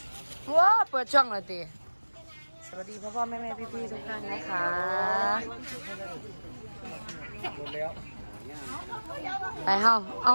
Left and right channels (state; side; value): inverted; both; correlation -1.00